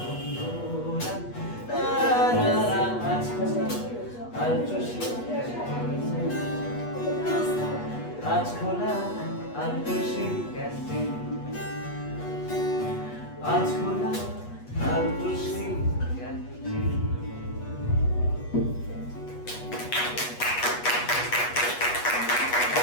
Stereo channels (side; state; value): right; late; 8.3 ms